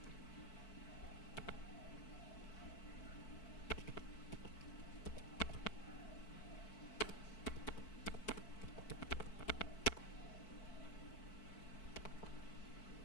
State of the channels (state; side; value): late; right; 4.5 ms